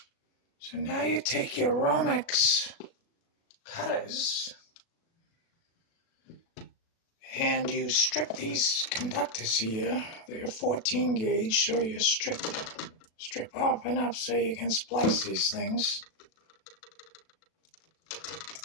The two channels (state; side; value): late; right; 37 ms